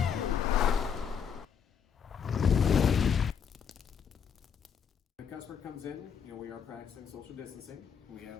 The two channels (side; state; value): right; quieter; 7.1 dB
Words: The customer comes in, we are practicing social distancing. We